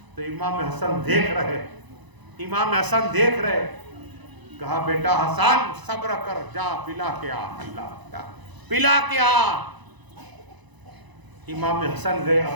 تو امام حسن دیکھ رہے کہا بیٹا حسن صبر کر جا پلا کے آ. اللہ پلا کے آ. امام حسن گئے.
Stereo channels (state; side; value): late; left; 1.0 ms